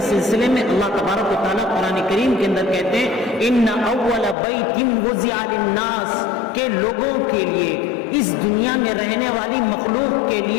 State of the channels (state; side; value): drops out; right; at 4.4 s